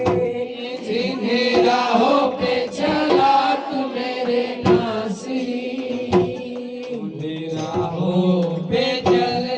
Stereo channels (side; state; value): both; identical; correlation 1.00